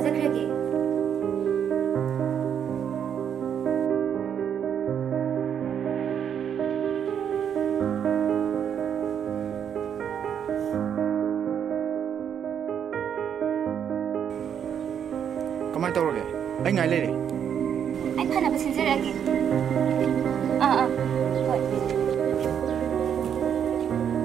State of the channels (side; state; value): left; quieter; 8.4 dB